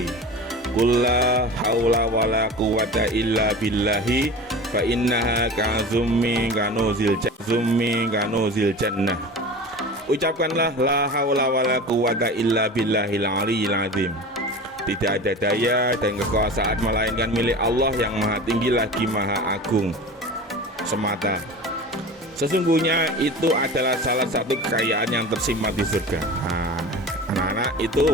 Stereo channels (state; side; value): normal; both; correlation 0.34